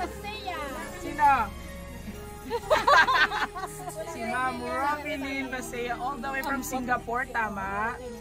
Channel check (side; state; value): both; identical; correlation 1.00